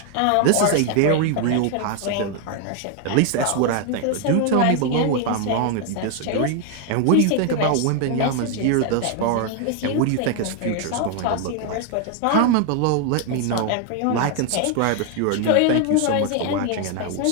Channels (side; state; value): both; different; correlation 0.00